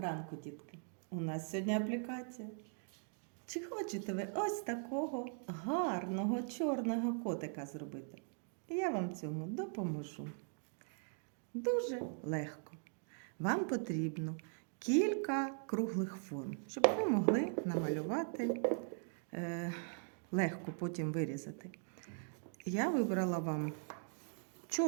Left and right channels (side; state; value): left; silent; 51 dB below the other